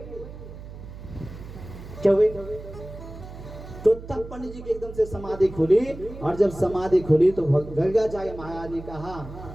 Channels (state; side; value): noise; right; hum, 13 dB below the sound